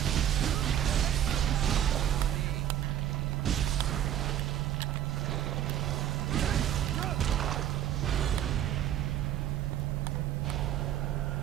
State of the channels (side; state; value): left; quieter; 11.0 dB